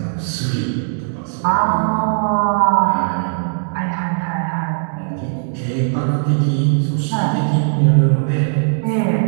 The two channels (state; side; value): silent; left; digital silence